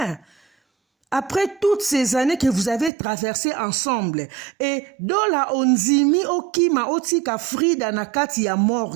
Après toutes ces années que vous avez traversées ensemble, et dans la onzimi okima otika Frida nakati ya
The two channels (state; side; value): drops out; left; at 2.9 s